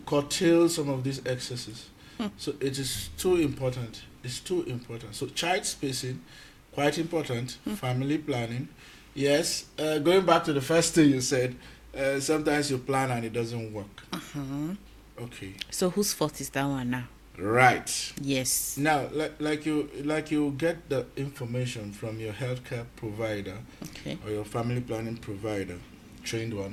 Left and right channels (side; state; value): both; identical; correlation 1.00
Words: curtail some of these excesses. So it is too important. It's too important. So child spacing, quite important. Family planning. Yes, going back to the first thing you said, sometimes you plan and it doesn't work. Okay. So whose fault is that one now? Right. Yes. Now, like you get the information from your healthcare provider Okay. or your family planning provider. trained one,